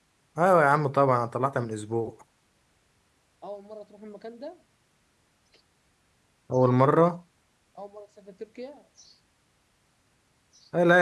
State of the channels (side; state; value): both; identical; correlation 1.00